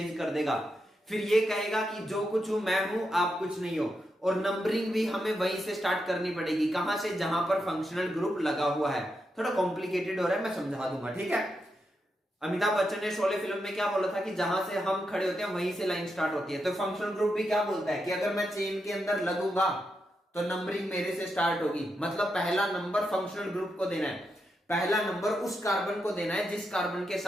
कर देगा। फिर ये कहेगा कि जो कुछ हूं मैं हूं, आप कुछ नहीं हो। और नंबरिंग भी हमें वहीं से स्टार्ट करनी पड़ेगी, कहां से? जहां पर फंक्शनल ग्रुप लगा हुआ है। थोड़ा कॉम्प्लिकेटेड हो रहा है, मैं समझा दूंगा, ठीक है। अमिताभ बच्चन ने शोले फिल्म में क्या बोला था कि जहां से हम खड़े होते हैं वहीं से लाइन स्टार्ट होती है। तो फंक्शनल ग्रुप भी क्या बोलता है कि अगर मैं चेन के अंदर लगूंगा तो नंबरिंग मेरे से स्टार्ट होगी। मतलब पहला नंबर फंक्शनल ग्रुप को देना है, पहला नंबर उस कार्बन को देना है जिस कार्बन के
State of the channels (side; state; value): both; normal; correlation 0.85